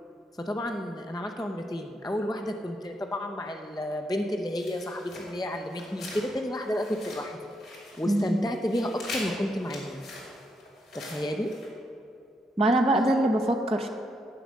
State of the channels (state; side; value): normal; both; correlation 0.79